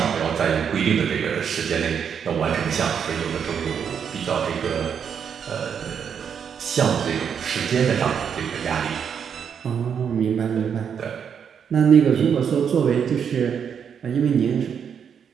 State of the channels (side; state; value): left; quieter; 7.5 dB